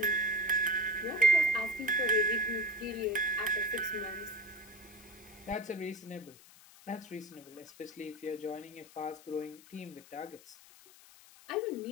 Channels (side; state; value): left; noise; hiss, 22 dB below the sound